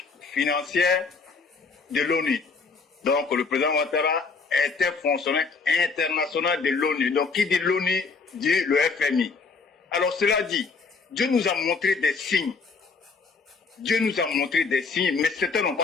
financière de l'ONU. Donc, le président Ouattara était fonctionnaire international de l'ONU. Donc, qui dit l'ONU dit le FMI. Alors, cela dit, Dieu nous a montré des signes. Dieu nous a montré des signes, mais certains n'ont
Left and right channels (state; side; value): quieter; right; 4.7 dB